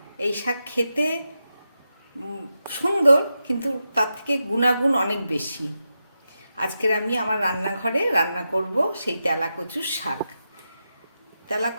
এই শাক খেতে সুন্দর, কিন্তু তার থেকে গুণাগুণ অনেক বেশি। আজকের আমি আমার রান্নাঘরে রান্না করব সেই তেলাকচুর শাক।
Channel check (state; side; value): inverted; both; correlation -0.89